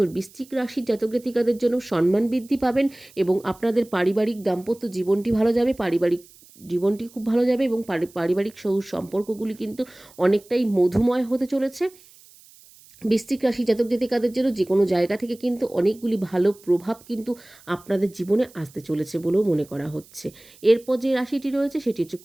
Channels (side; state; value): right; noise; hiss, 25 dB below the sound